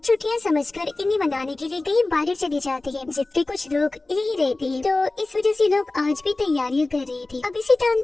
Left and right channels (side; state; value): right; quieter; 3.1 dB